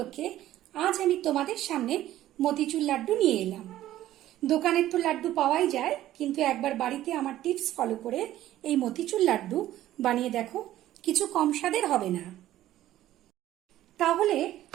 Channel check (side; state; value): left; quieter; 13.7 dB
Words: আজ আমি তোমাদের সামনে মতিচুর লাড্ডু নিয়ে এলাম। দোকানের তো লাড্ডু পাওয়াই যায়, কিন্তু একবার বাড়িতে আমার টিপস ফলো করে এই মতিচুর লাড্ডু বানিয়ে দেখো, কিছু কম স্বাদের হবে না। তাহলে